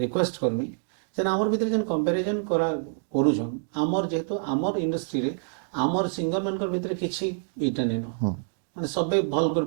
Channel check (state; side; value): silent; left; digital silence